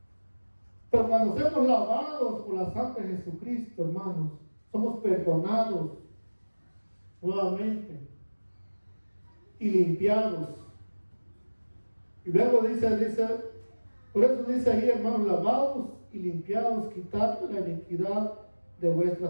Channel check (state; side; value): inverted; both; correlation -1.00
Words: Pero cuando somos lavados por la sangre de Jesucristo, hermanos, somos perdonados nuevamente y limpiados. Y luego dice, por eso dice ahí, hermanos, lavados y limpiados, quitad la iniquidad de